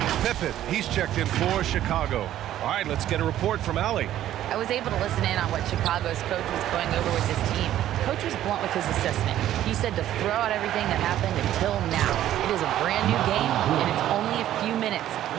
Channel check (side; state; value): left; quieter; 12.5 dB